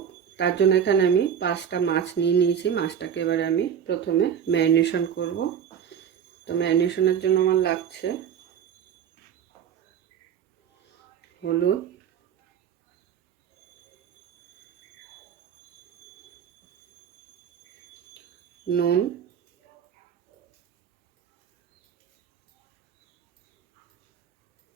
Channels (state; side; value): quieter; left; 8.3 dB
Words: তার জন্য এখানে আমি 5টা মাছ নিয়ে নিয়েছি। মাছটাকে এবারে আমি প্রথমে ম্যারিনেশন করব। তো ম্যারিনেশনের জন্য আমার লাগছে হলুদ, নুন,